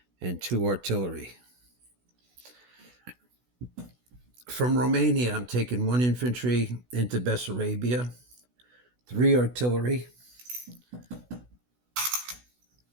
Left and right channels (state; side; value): late; left; 16 ms